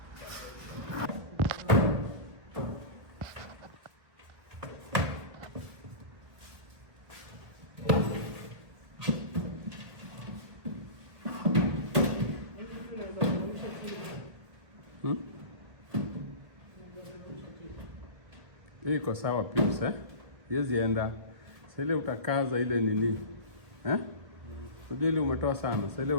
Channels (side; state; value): left; late; 1.5 ms